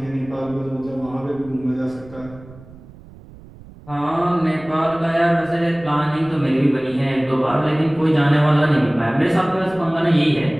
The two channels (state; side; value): noise; right; rumble, 21 dB below the sound